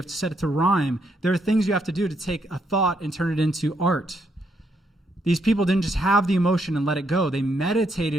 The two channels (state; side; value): normal; both; correlation 0.76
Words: to set it to rhyme. There are things you have to do to take a thought and turn it into art. These people didn't just have the emotion and let it go. They